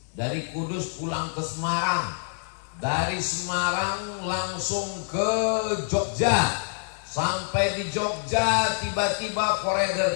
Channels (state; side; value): silent; right; 61 dB below the other